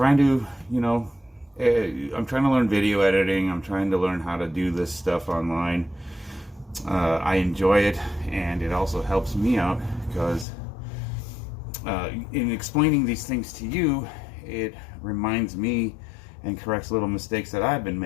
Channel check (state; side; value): drops out; right; at 10.5 s